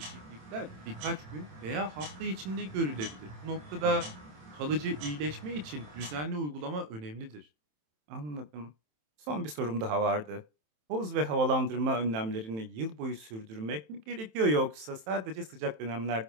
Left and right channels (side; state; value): left; late; 27 ms